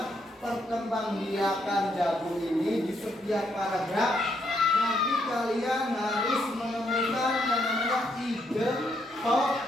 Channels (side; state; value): both; normal; correlation 0.75